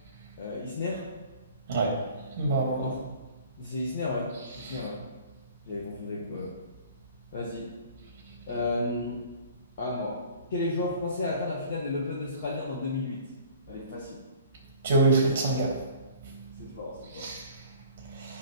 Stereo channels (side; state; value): both; inverted; correlation -0.49